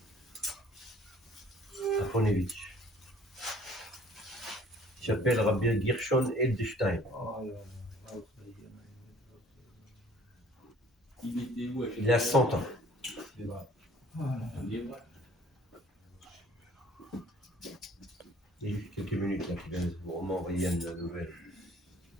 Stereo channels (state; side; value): normal; both; correlation 0.53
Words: à Ponevitch. Il s'appelle Rabbi Gershon Edelstein. Il a 100 ans. Il y a juste quelques minutes là, qui vient de vous m'envoyer une nouvelle.